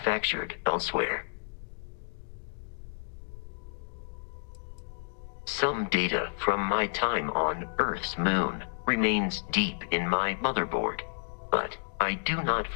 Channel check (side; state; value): right; silent; digital silence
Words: elsewhere. Some data from my time on Earth's moon remains deep in my motherboard, but I do not